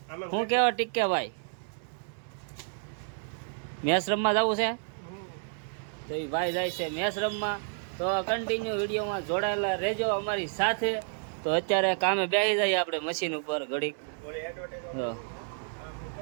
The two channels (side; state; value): left; silent; 58 dB below the other